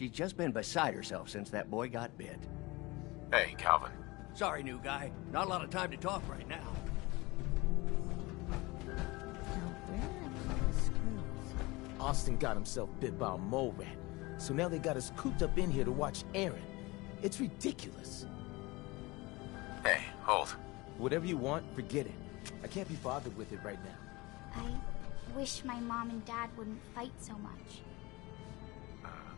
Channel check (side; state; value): right; quieter; 22.9 dB